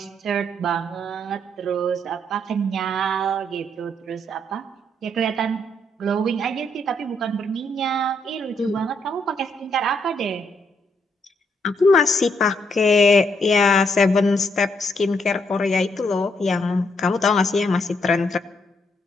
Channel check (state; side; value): normal; both; correlation 0.74